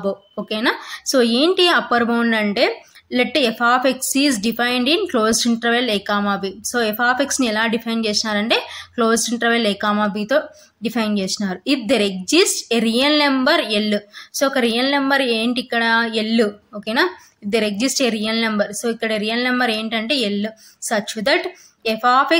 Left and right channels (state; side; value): identical; both; correlation 1.00